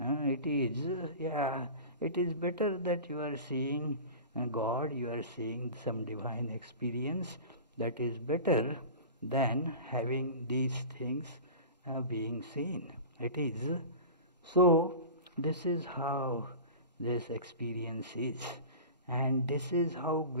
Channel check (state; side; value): inverted; both; correlation -0.33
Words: is better that you are seeing God, you are seeing some divine experience. That is better than having these things being seen. It is. So, this is how this experience is. And this is how